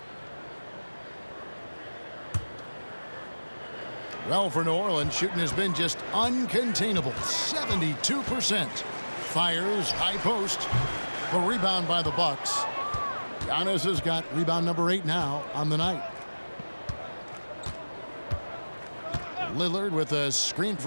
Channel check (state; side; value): inverted; both; correlation -1.00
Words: Well, for New Orleans, shooting has been just uncontainable. 72%. Fires, high post. The rebound by the Bucks. Giannis has got rebound number 8 now on the night. Lillard with a screen